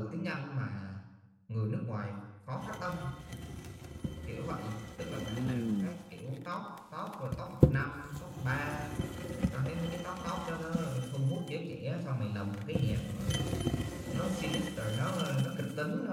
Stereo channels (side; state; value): both; identical; correlation 1.00